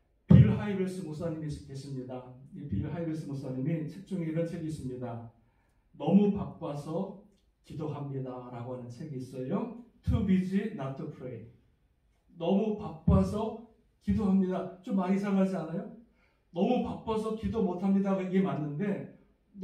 빌 하이벨스 목사님이 계십니다. 이 빌 하이벨스 목사님이 책 중에 이런 책이 있습니다. 너무 바빠서 기도합니다 라고 하는 책이 있어요. Too busy not to pray. 너무 바빠서 기도합니다. 좀 많이 이상하지 않아요? 너무 바빠서 기도 못합니다. 이게 맞는데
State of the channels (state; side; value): identical; both; correlation 1.00